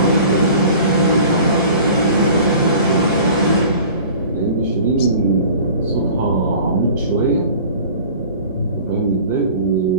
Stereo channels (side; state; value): both; inverted; correlation -0.44